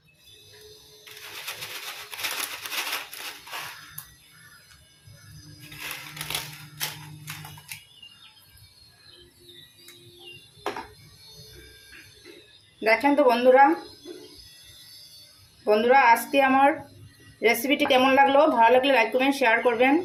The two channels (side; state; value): both; identical; correlation 1.00